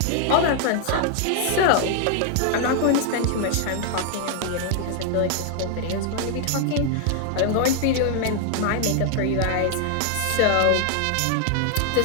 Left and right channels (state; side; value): different; both; correlation 0.00